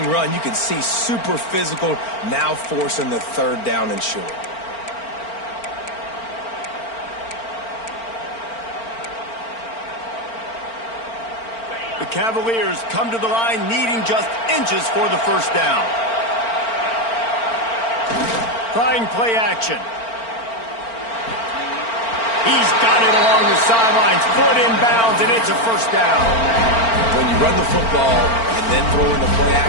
run. You can see super physical, now forcing the 3rd down and short. The Cavaliers come to the line needing just inches for the 1st down. Trying play action. He's got it along the sidelines, foot inbounds, and it's a 1st down. When you run the football and then throw in the play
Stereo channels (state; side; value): late; right; 4.4 ms